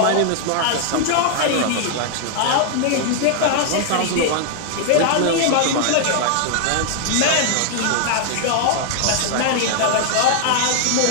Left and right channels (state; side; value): different; both; correlation 0.00